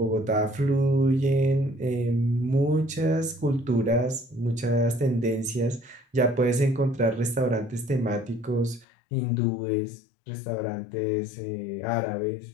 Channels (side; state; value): right; drops out; at 8.8 s